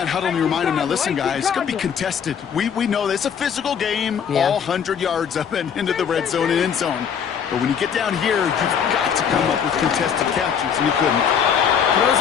huddle and you remind him, now listen, guys, it's going to be contested. We know this. It's a physical game, all 100 yards up and into the red zone and end zone. But when you get down here, you've got to come up with contested catches, and you couldn't. Throws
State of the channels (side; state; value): right; quieter; 7.6 dB